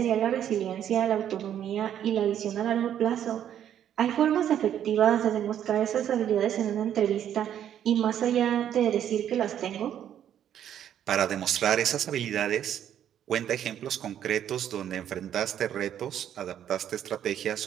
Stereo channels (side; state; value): left; quieter; 10.1 dB